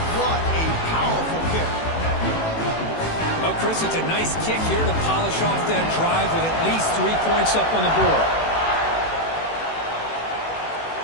What a powerful kick. Well, Chris, it's a nice kick here to polish off that drive with at least 3 points up on the board.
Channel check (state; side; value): late; right; 18 ms